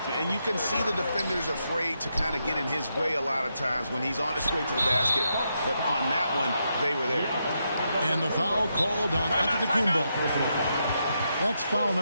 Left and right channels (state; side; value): inverted; both; correlation -0.82